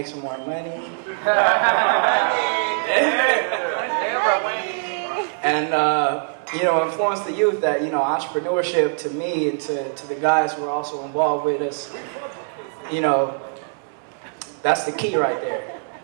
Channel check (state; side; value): silent; left; digital silence